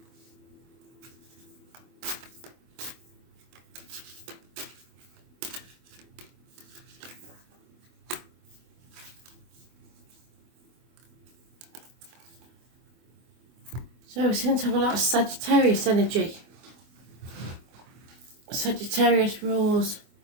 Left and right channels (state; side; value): late; left; 24 ms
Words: So we seem to have a lot of Sagittarius energy. Sagittarius rules